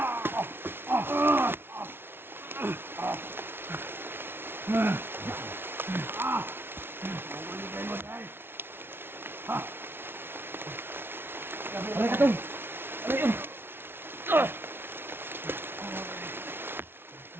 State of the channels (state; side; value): late; left; 0.11 ms